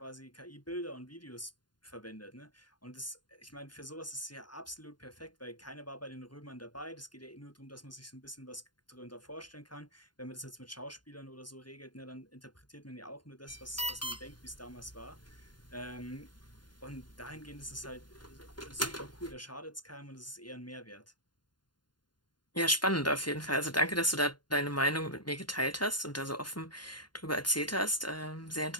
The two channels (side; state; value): right; late; 0.71 ms